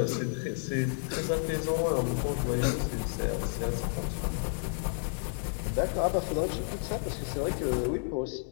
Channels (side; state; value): right; silent; digital silence